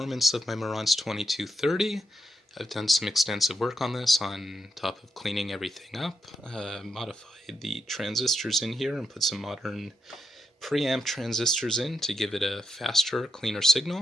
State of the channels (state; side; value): normal; both; correlation 0.83